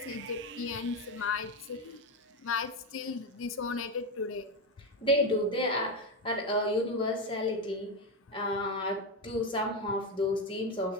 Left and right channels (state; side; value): normal; both; correlation 0.12